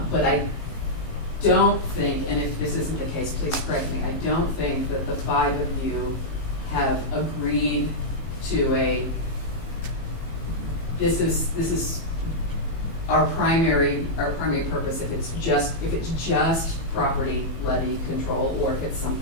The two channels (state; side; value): late; right; 18 ms